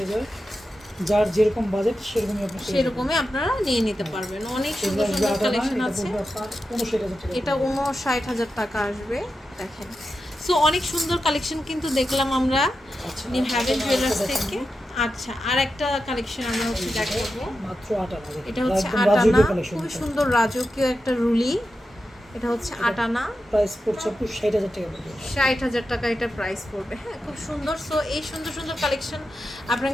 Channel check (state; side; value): normal; both; correlation 0.90